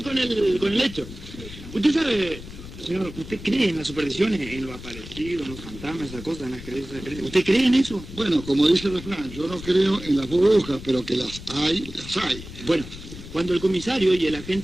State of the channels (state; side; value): noise; left; rumble, 13 dB below the sound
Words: con el hecho. Usted sabe, señor, ¿usted cree en las supersticiones, en lo aparecido, en los fantasmas, esas cosas, en las creencias? ¿Usted cree en eso? Bueno, como dice el refrán, yo no creo en las burbujas, pero que las hay, las hay. Bueno, cuando el comisario y el